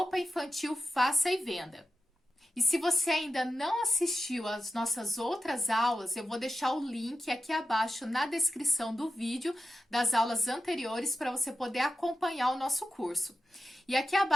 Infantil Faça e Venda. E se você ainda não assistiu às nossas outras aulas, eu vou deixar o link aqui abaixo na descrição do vídeo das aulas anteriores para você poder acompanhar o nosso curso. E aqui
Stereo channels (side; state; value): both; normal; correlation 0.90